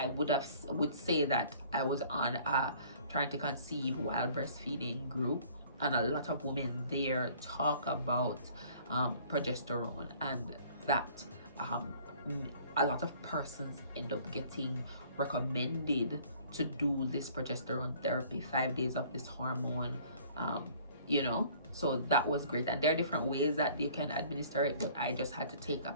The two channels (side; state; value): both; inverted; correlation -0.54